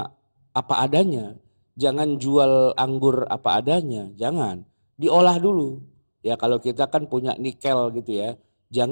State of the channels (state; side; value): inverted; both; correlation -1.00